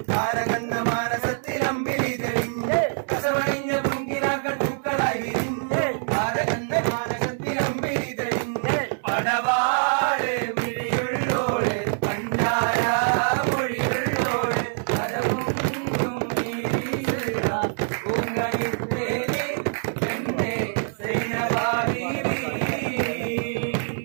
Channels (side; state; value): left; silent; 62 dB below the other